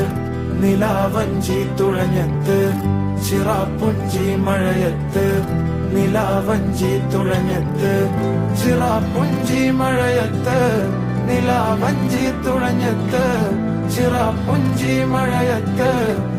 നിലാവഞ്ചി തുഴഞ്ഞത്ത്, ചിറാപ്പുഞ്ചി മഴയത്ത് നിലാവഞ്ചി തുഴഞ്ഞത്ത്, ചിറാപ്പുഞ്ചി മഴയത്ത് നിലാവഞ്ചി തുഴഞ്ഞത്ത്, ചിറാപ്പുഞ്ചി മഴയത്ത്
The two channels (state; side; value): identical; both; correlation 1.00